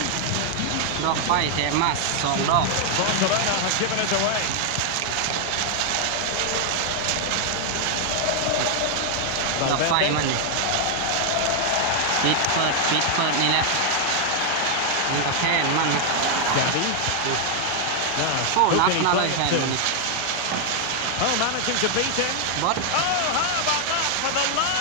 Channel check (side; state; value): both; different; correlation 0.00